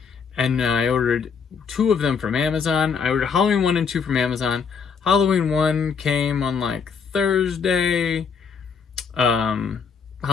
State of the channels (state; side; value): quieter; right; 6.1 dB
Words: and I ordered 2 of them from Amazon. I ordered Halloween 1 and 2 from Amazon. Halloween 1 came on Thursday.